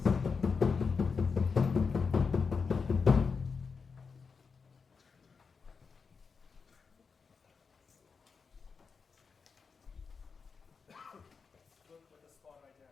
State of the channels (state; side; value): quieter; right; 5.3 dB